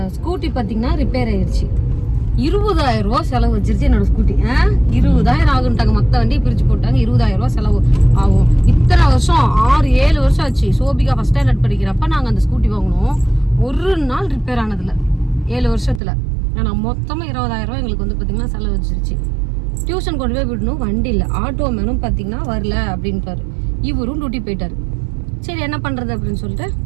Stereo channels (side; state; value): left; drops out; at 16.0 s